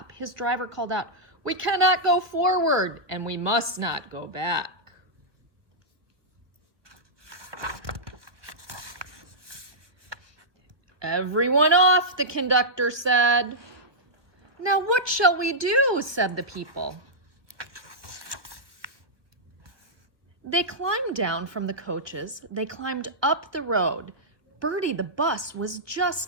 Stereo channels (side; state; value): left; late; 1.0 ms